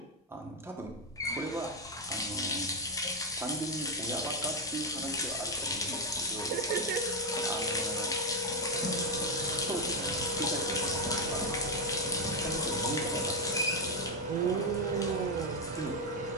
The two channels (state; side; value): normal; both; correlation 0.04